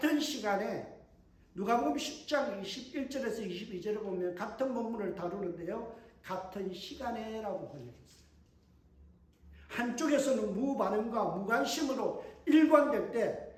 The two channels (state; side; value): identical; both; correlation 1.00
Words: 시간에 누가복음 10장 21절에서 22절을 보면 같은 본문을 다루는데요, 같은 시간에라고 번역했어요. 한쪽에서는 무반응과 무관심으로 일관될 때